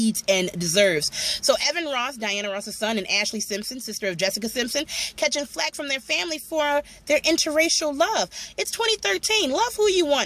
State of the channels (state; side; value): identical; both; correlation 1.00